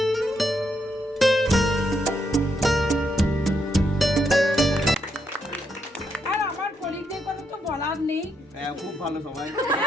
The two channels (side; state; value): both; normal; correlation 0.78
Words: বলার নেই। খুব ভালো সবাই।